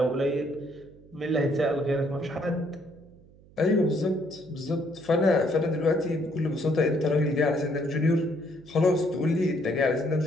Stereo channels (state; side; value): noise; right; hum, 25 dB below the sound